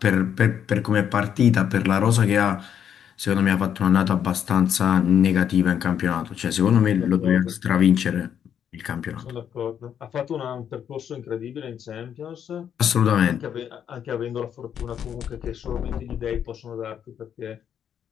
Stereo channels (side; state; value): right; quieter; 8.8 dB